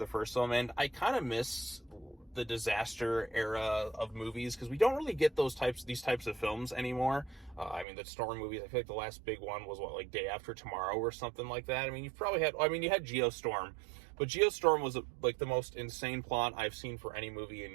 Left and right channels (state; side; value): drops out; left; at 7.9 s